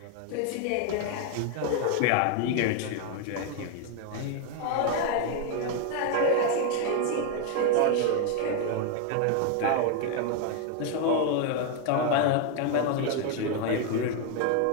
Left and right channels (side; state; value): both; different; correlation 0.01